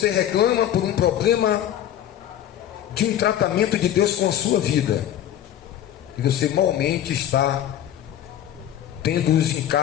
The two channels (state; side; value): quieter; right; 11.2 dB